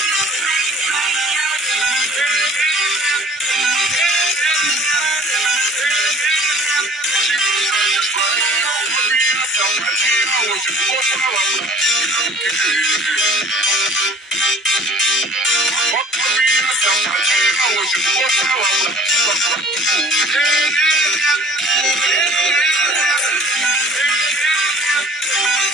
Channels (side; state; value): both; normal; correlation 0.48